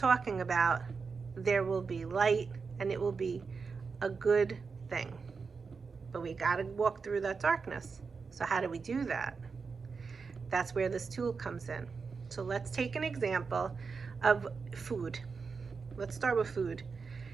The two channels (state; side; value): quieter; left; 5.0 dB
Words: about, there will be light and it will be a good thing. But we got to walk through that darkness. So how do we do that? That's where this tool comes in. So let's take an example of food. Let's start with food.